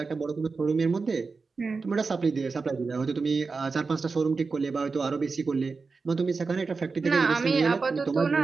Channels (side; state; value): left; quieter; 4.4 dB